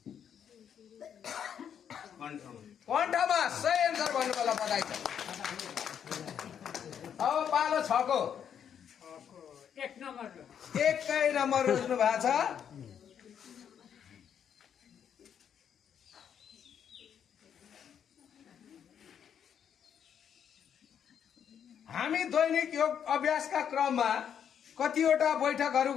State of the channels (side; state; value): right; quieter; 8.5 dB